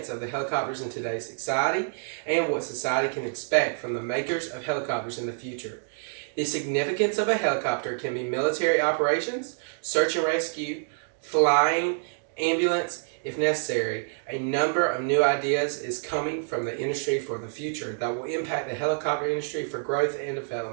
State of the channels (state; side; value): silent; left; digital silence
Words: of the helicopters in today's society and what society can expect from the makers of helicopters in the future. The significance of a helicopter can be military operations, search and rescue, flying, ambulance, if necessary. A number of new ideas is coming from the industry for the future that will impact the helicopter industry for growth and